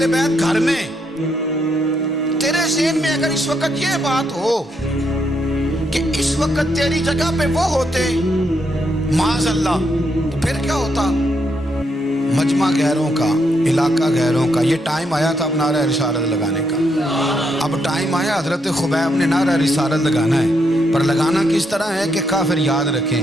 بیت گھر میں. تیرے ذہن میں اگر اس وقت یہ بات ہو کہ اس وقت تیری جگہ پہ وہ ہوتے معاذ اللہ، تو پھر کیا ہوتا؟ مجمع غیروں کا، علاقہ غیروں کا. یہ ٹائم آیا تھا اب نعرہ رسالت لگانے کا. اب ٹائم آیا حضرت خبیب نے نعرہ رسالت لگانا ہے، پر لگانا کس طرح ہے کہ کافر یاد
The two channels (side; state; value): both; normal; correlation 0.78